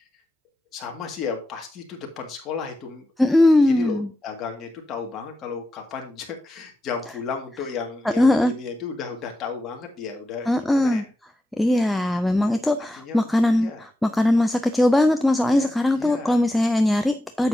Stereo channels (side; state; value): both; normal; correlation 0.91